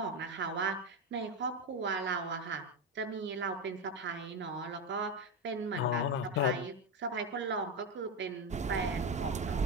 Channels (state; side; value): normal; both; correlation 0.12